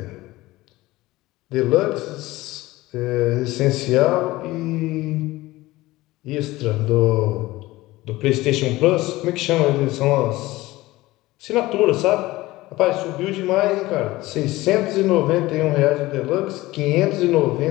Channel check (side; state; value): right; quieter; 18.6 dB